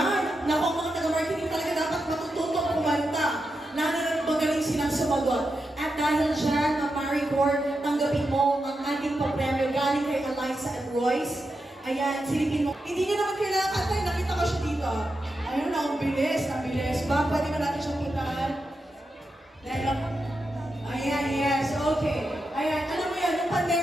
Naku, mga taga-marketing talaga dapat matututong kumanta. Lalo na magaling silang sumagot. At dahil dyan, Maricore, tanggapin mo ang ating papremyo galing kay Eliza and Royce. Ayan, silipin mo. Hindi niyo naman kailangan kantay, nakita ko siya dito. Ayun na, ang bilis. Ba, pwede ba natin siyang puntahan? Dahil ako. Ayan, yes, okay. Ayan, alam mo yan, yung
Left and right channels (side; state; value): both; normal; correlation 0.87